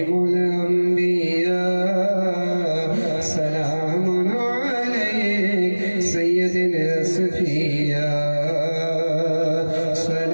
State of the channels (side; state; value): both; inverted; correlation -1.00